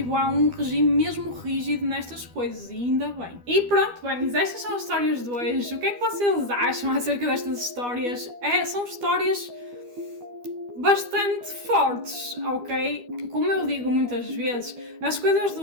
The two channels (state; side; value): late; left; 12 ms